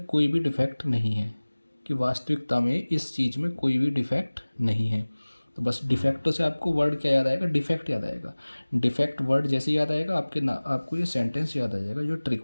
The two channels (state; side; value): inverted; both; correlation -1.00